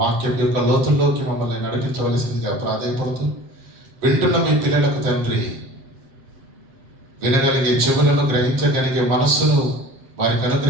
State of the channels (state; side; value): late; left; 7.5 ms